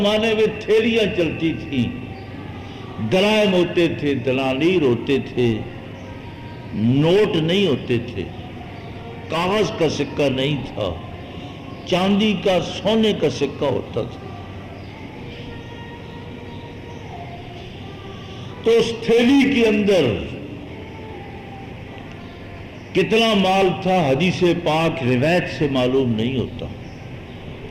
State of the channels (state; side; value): identical; both; correlation 1.00